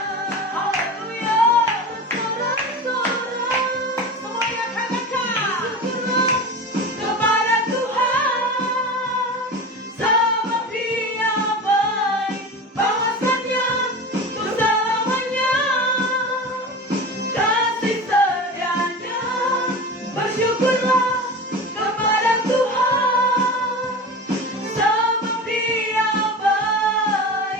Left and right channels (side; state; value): both; normal; correlation 0.30